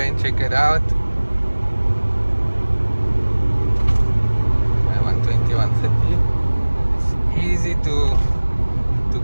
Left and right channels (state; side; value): inverted; both; correlation -1.00